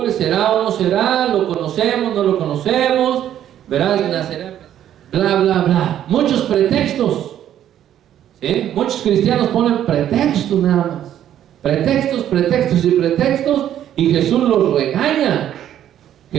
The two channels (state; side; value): quieter; left; 11.0 dB